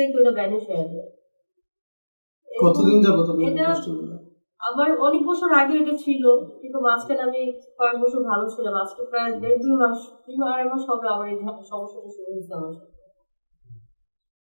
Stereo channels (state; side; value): inverted; both; correlation -1.00